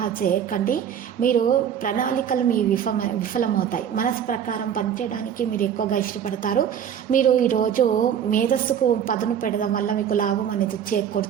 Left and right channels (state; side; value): quieter; left; 8.8 dB